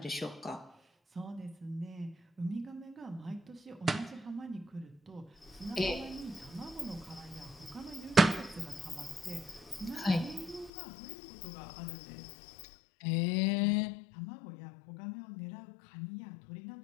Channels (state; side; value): drops out; right; at 10.7 s